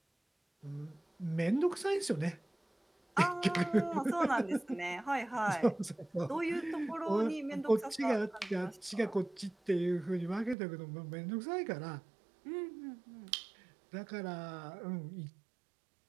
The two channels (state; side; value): drops out; left; at 10.6 s